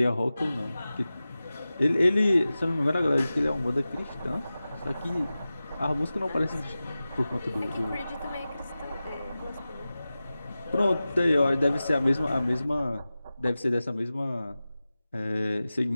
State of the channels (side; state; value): both; inverted; correlation -0.95